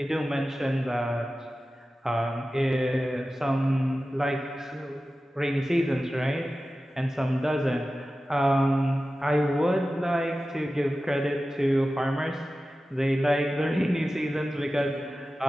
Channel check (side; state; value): both; normal; correlation 0.95